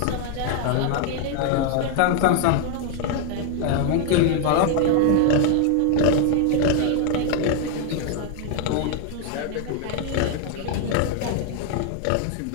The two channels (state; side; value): different; both; correlation 0.00